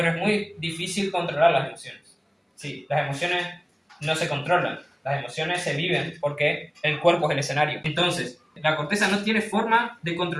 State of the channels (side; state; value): both; identical; correlation 1.00